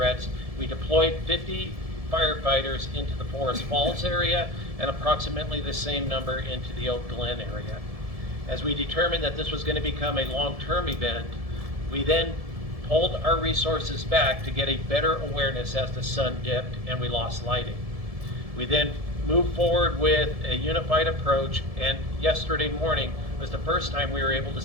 We deployed 50 firefighters into the Forest Falls area and approximately the same number into the Oak Glen area. As we determined that this was going to become a long-term event, we then pulled our resources back to get a better awareness as the sun dipped and we lost lighting. We then moved forward with a unified approach, and yesterday morning was the first time we were able to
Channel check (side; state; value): left; late; 1.7 ms